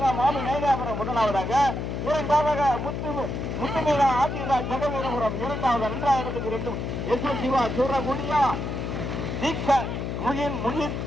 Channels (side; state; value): left; noise; hum, 4 dB below the sound